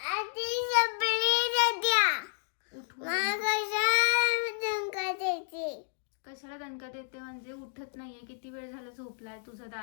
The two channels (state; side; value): silent; right; digital silence